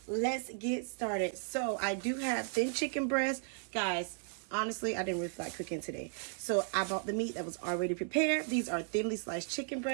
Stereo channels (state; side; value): silent; left; 54 dB below the other